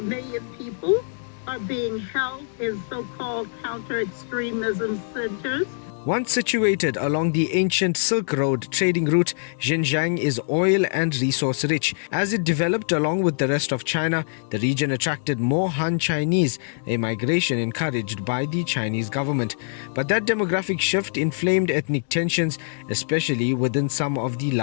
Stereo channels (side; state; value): right; silent; 63 dB below the other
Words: million people are being held in so-called counter-extremism centers. Once situated along the ancient Silk Road trading route, Xinjiang is oil and resource rich. As it developed along with the rest of China, the region attracted more Han Chinese, a migration encouraged by the Chinese government. But that demographic shift inflamed ethnic tensions, especially within some of the